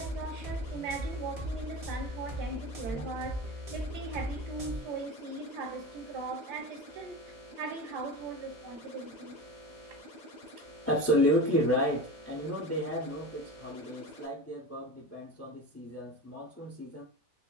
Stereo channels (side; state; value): both; normal; correlation 0.28